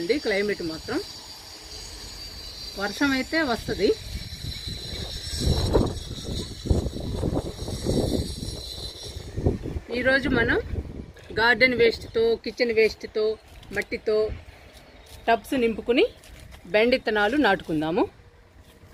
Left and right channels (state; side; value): identical; both; correlation 1.00